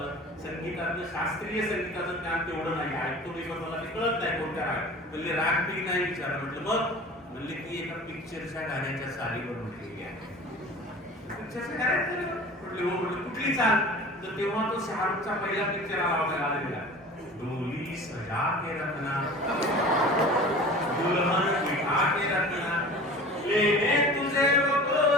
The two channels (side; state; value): both; normal; correlation 0.40